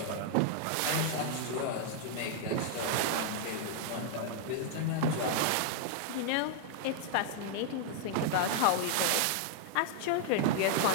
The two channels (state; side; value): different; both; correlation -0.01